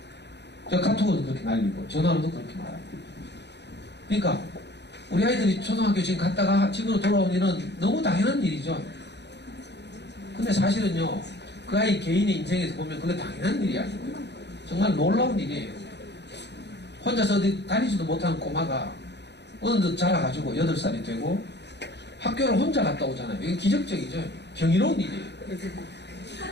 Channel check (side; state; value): right; late; 0.50 ms